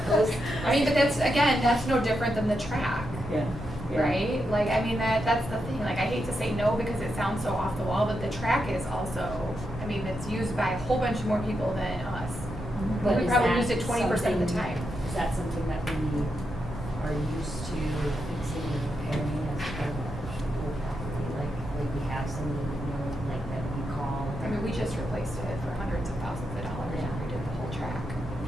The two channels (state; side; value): normal; both; correlation 0.85